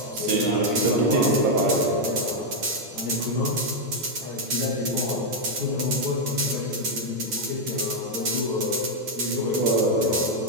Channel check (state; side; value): late; left; 9.1 ms